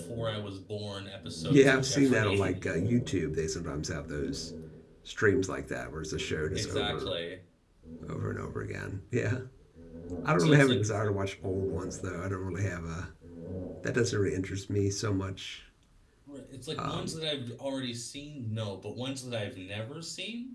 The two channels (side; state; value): both; identical; correlation 1.00